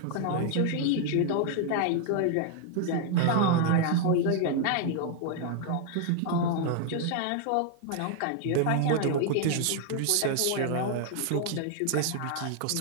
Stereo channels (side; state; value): both; different; correlation 0.00